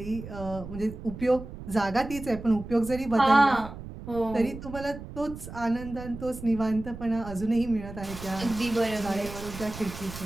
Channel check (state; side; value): noise; right; rumble, 12 dB below the sound